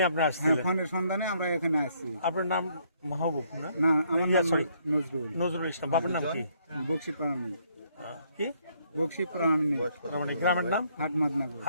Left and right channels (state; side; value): inverted; both; correlation -0.69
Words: আপনি আসছিলেন? ফোনের সন্ধানে আমরা এখানে আসছি। আপনার নাম মাহবুব না? না, আমার নাম নজরুল। নজরুল ইসলাম। বাবার নাম কি? বক্সি প্রাণী। কি? বক্সি প্রাণী। মানে গ্রামের নাম? হাটমাদনগর।